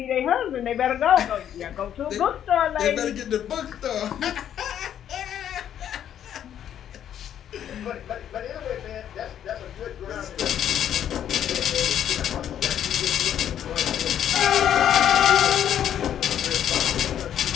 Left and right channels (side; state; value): right; quieter; 10.0 dB